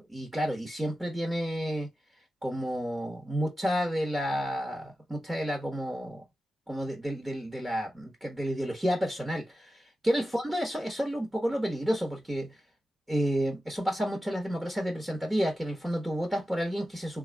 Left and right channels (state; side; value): normal; both; correlation 0.93